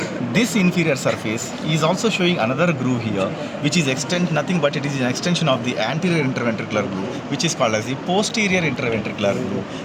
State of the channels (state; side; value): identical; both; correlation 1.00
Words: this inferior surface is also showing another groove here, which is nothing but it is an extension of the anterior interventricular groove, which is called as the posterior interventricular groove,